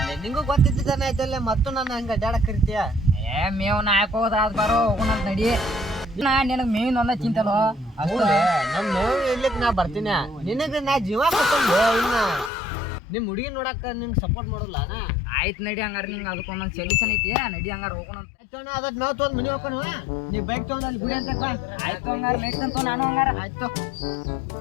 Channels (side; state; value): right; drops out; at 12.5 s